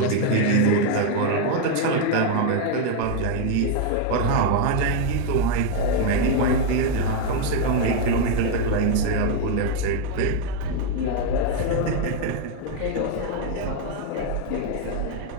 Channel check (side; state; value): both; different; correlation 0.01